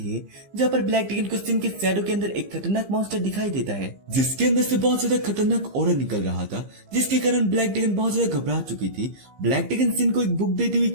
है, जहाँ पर ब्लैक ड्रैगन को सिन के शैडो के अंदर एक खतरनाक मॉन्स्टर दिखाई देता है, जिसके अंदर से बहुत ज्यादा खतरनाक ऑरा निकल रहा था, जिसके कारण ब्लैक ड्रैगन बहुत ज्यादा घबरा चुकी थी। ब्लैक ड्रैगन सिन को एक बुक देती हुई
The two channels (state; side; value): late; left; 15 ms